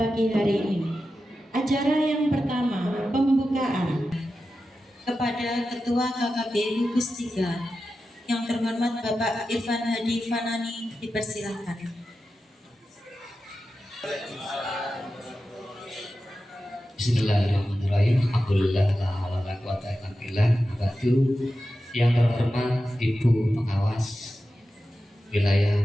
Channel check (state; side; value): normal; both; correlation 0.92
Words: hari ini, acara yang pertama, pembukaan. Kepada Ketua KKB Gugus 3 yang terhormat Bapak Irfan Hadi Fanani, dipersilakan. Bismillahirrahmanirrahim. Alhamdulillah la haula wala quwata illa billah. Yang terhormat Ibu Pengawas